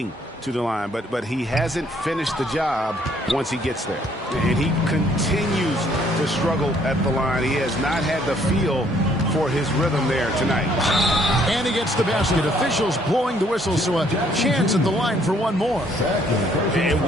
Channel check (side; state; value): both; normal; correlation 0.65